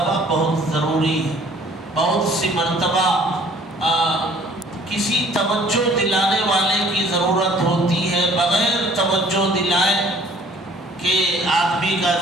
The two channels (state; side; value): normal; both; correlation 0.55